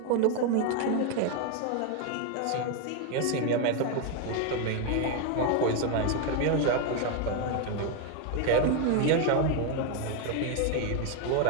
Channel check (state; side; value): different; both; correlation 0.01